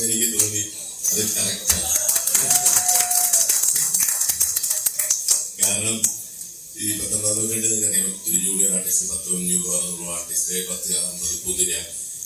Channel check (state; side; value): identical; both; correlation 1.00